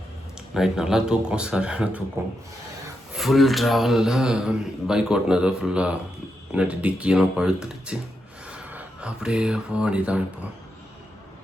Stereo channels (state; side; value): normal; both; correlation 0.84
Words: நைட் நல்லா தூக்கம், சரியான தூக்கம். ஃபுல் ட்ராவலில் பைக் ஓட்டினது ஃபுல்லாக நட்டு டிக்கியெல்லாம் பழுத்துடுச்சு. அப்படியே போக வேண்டியதான். இப்போ